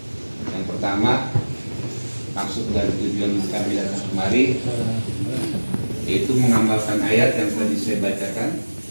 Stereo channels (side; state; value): both; inverted; correlation -1.00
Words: Yang pertama, maksud dan tujuan kami datang kemari yaitu mengamalkan ayat yang tadi saya bacakan